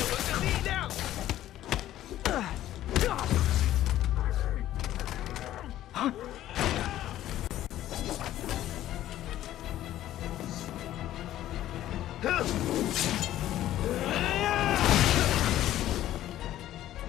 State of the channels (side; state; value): right; quieter; 13.3 dB